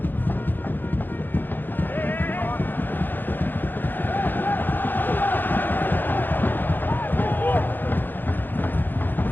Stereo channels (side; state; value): right; late; 0.090 ms